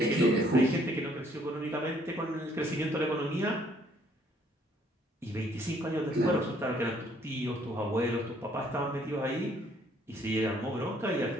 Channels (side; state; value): both; normal; correlation 0.64